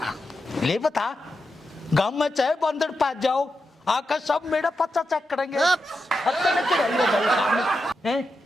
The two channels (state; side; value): normal; both; correlation 0.87